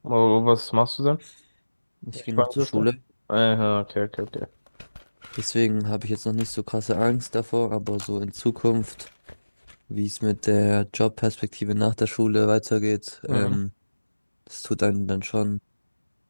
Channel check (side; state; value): both; inverted; correlation -1.00